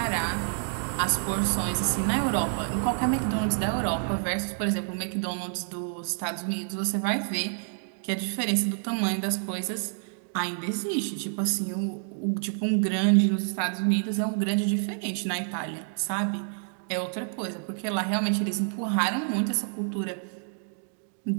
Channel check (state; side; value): silent; left; digital silence